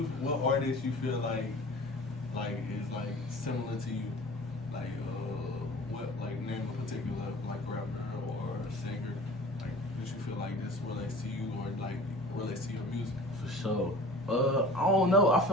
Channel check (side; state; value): both; normal; correlation 0.42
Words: artist you feel like is like similar to you? Like what like name a particular like rapper or singer? Like that you feel like this relates to you or like relates to your music? For sure. I don't know. I